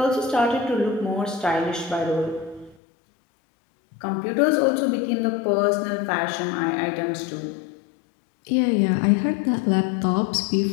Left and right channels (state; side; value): drops out; right; at 2.8 s